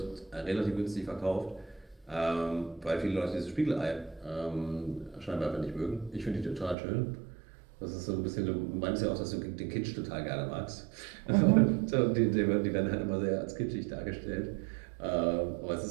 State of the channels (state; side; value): drops out; left; at 6.8 s